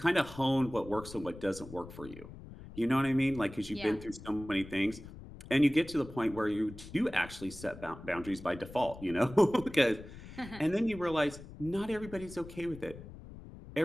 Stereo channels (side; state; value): left; noise; rumble, 15 dB below the sound